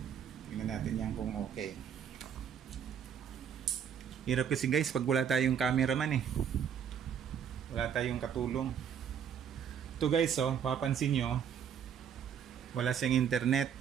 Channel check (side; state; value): left; quieter; 8.2 dB